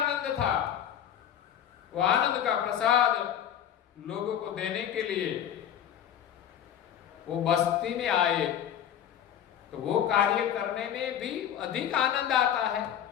था, वो आनंद का प्रसाद लोगों को देने के लिए वो बस्ती में आए, तो वो कार्य करने में भी अधिक आनंद आता है।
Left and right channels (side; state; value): right; quieter; 9.9 dB